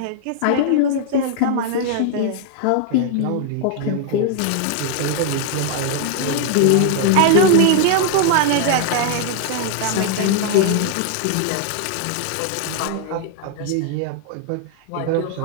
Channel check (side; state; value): both; different; correlation 0.00